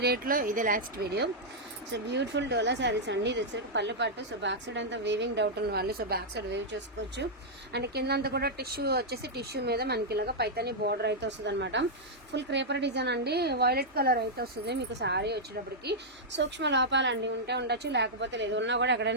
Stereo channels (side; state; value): both; normal; correlation -0.06